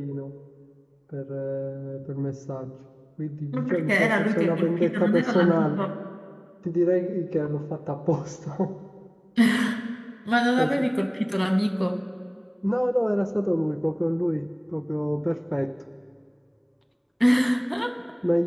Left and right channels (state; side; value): identical; both; correlation 1.00